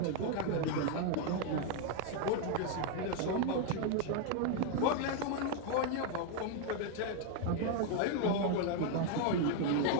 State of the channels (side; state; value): both; different; correlation 0.00